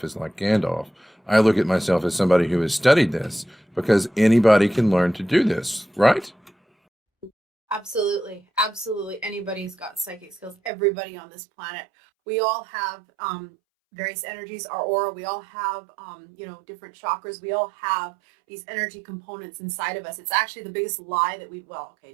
as like Gandalf. I look at myself as somebody who has studied this, because anybody can learn to do this, right? Absolutely. Absolutely. Anybody's got psychic skills. Everybody on this planet. We all have various energies, our aura. We all have, different chakras. We all have these energy components inside of us. It's actually the biggest lie that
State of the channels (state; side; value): drops out; left; at 10.7 s